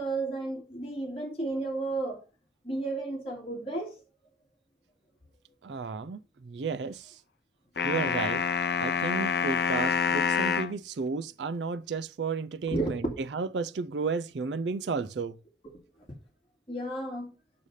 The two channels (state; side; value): normal; both; correlation 0.36